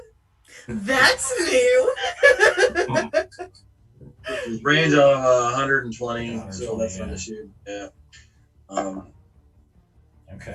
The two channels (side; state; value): both; identical; correlation 1.00